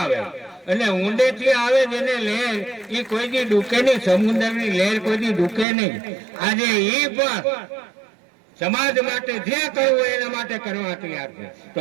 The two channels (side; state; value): left; drops out; at 5.7 s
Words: અને ઊંડેથી આવે જેને લહેર એ કોઈ દી ડૂકે નહીં, સમુદ્રની લહેર કોઈ દી ડૂકે નહીં. આજે એ પણ સમાજ માટે જે કરવું એના માટે કરવા તૈયાર છે. તો